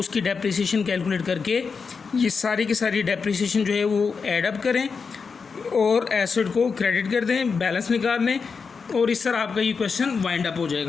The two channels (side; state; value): right; quieter; 5.3 dB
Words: डेप्रिसिएशन कैलकुलेट करके ये सारी की सारी डेप्रिसिएशन जो है वो ऐड अप करें और एसेट को क्रेडिट कर दें, बैलेंस निकाल लें, और इस तरह आपका ये क्वेश्चन वाइंड अप हो